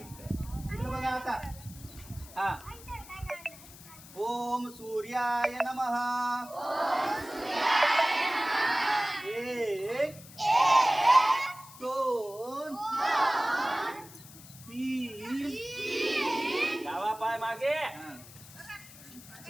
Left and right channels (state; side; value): noise; left; hiss, 18 dB below the sound